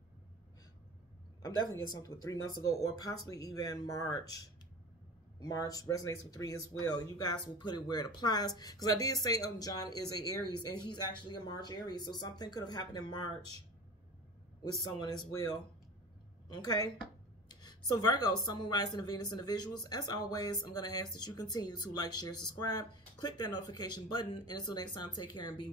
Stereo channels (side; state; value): both; normal; correlation 0.34